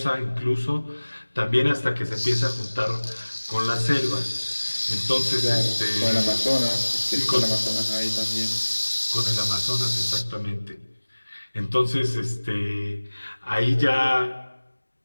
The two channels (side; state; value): both; inverted; correlation -1.00